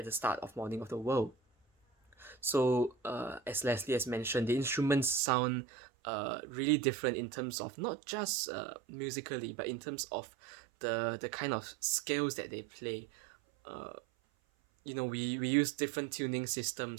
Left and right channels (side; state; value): left; drops out; at 5.2 s